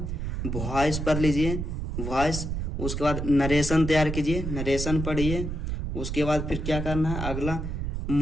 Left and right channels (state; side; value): noise; right; rumble, 3 dB below the sound